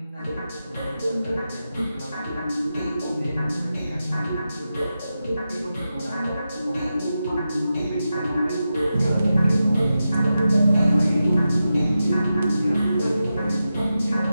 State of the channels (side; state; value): both; inverted; correlation -0.90